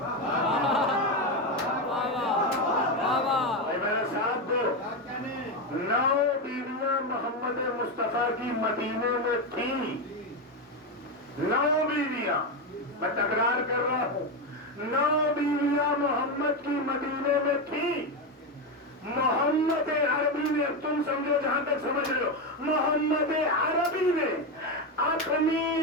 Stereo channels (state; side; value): normal; both; correlation 0.11